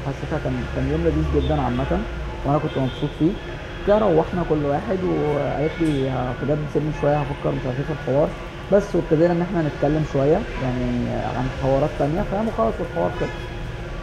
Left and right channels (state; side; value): identical; both; correlation 1.00